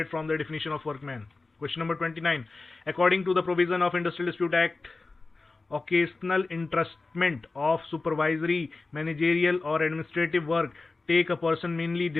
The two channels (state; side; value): quieter; right; 3.6 dB